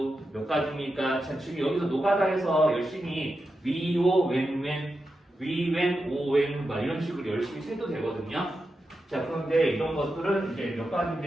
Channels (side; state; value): both; normal; correlation 0.89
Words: 몇 가지입니까? 자, 지금 여기서 노가다해서 열심히 위, 오, 왼, 위, 왼, 오, 왼 막 이런 식으로 열심히 세도 되거든요. 자, 그런데 이런 것들은 이제 몇